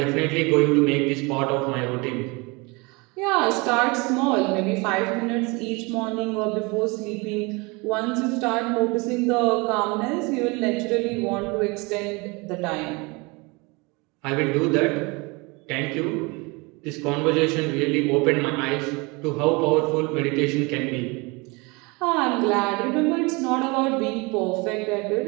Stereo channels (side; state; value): left; quieter; 27.2 dB